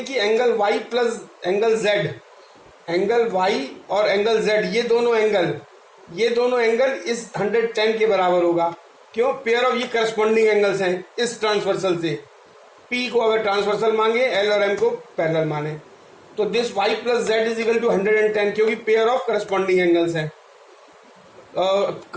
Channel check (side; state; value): both; identical; correlation 1.00